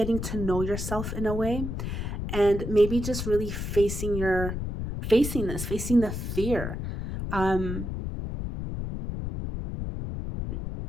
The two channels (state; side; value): noise; left; rumble, 4 dB below the sound